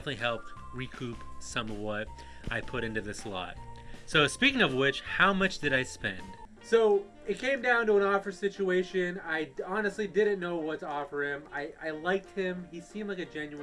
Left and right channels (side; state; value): both; identical; correlation 1.00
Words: helped recoup some of what I put into this lot. So speaking of which, how much did I spend? So it came down to an offer situation. I honestly didn't know what to offer him. I liked him. He seemed like a